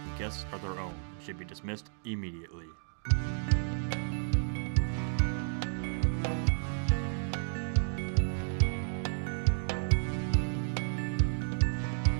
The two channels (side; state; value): left; silent; 56 dB below the other